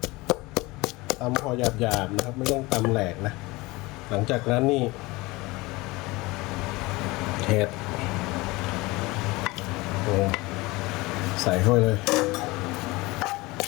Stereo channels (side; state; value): right; quieter; 22.2 dB